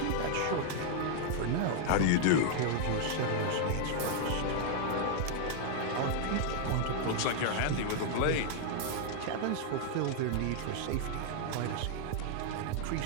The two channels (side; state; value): both; different; correlation 0.00